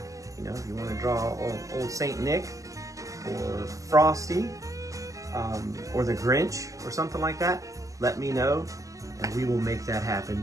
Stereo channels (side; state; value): left; late; 0.16 ms